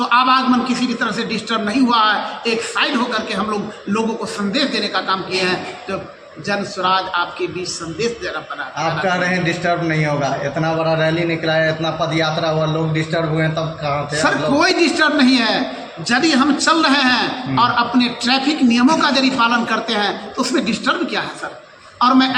आवागमन किसी भी तरह से डिस्टर्ब नहीं हुआ है। एक साइड होकर के हम लोग लोगों को संदेश देने का काम किए हैं। तो जन स्वराज आपके बीच संदेश देना पड़ा। आप कह रहे हैं डिस्टर्ब नहीं होगा, इतना बड़ा रैली निकला है, इतना पद यात्रा हुआ, लोग डिस्टर्ब हुए हैं, तब कहाँ थे? सर, कोई डिस्टर्ब नहीं है। यदि हम चल रहे हैं और अपने ट्रैफिक नियमों का यदि पालन करते हैं तो उसमें डिस्टर्ब क्या है सर? और मैं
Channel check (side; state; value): both; identical; correlation 1.00